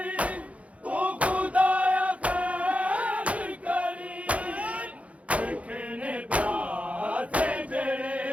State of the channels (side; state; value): left; late; 0.065 ms